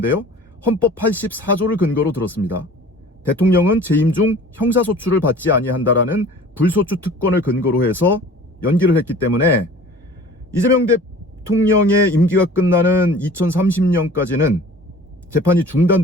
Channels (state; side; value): normal; both; correlation 0.45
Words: 헌법 84조를 근거로 들었습니다. 대통령은 재임 중 형사소추를 받지 아니한다라는 불소추 특권을 근거로 해서 연기를 했기 때문에 이재명 대통령의 임기가 끝나는 2030년까지는 재판이